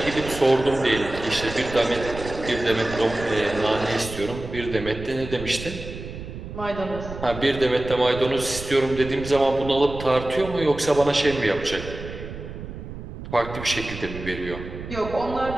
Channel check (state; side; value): noise; right; rumble, 11 dB below the sound